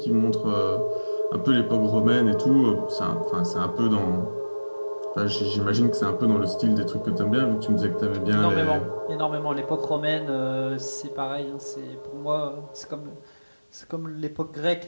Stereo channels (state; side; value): inverted; both; correlation -1.00